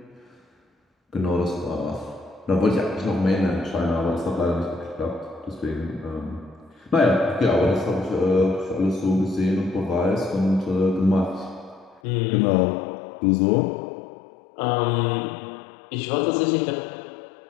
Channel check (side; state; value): right; drops out; at 12.0 s